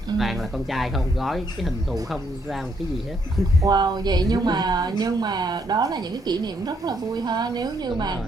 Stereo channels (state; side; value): normal; both; correlation 0.73